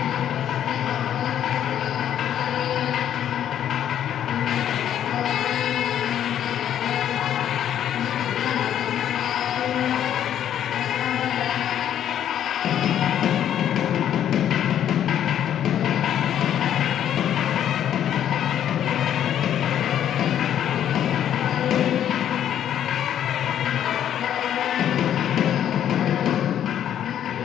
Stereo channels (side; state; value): right; quieter; 10.3 dB